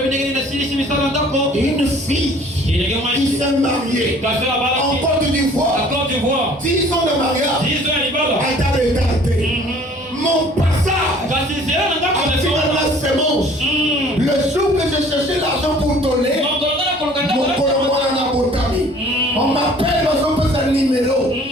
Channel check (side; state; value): both; normal; correlation 0.52